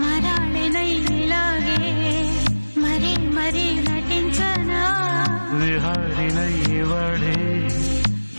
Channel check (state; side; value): inverted; both; correlation -1.00